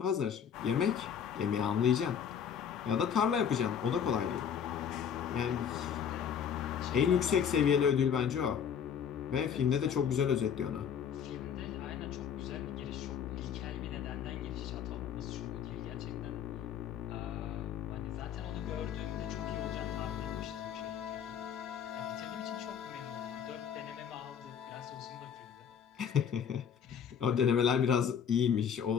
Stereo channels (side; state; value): right; quieter; 7.9 dB